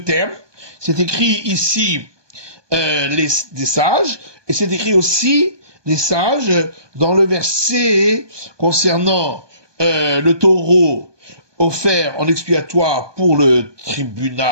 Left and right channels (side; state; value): left; late; 1.2 ms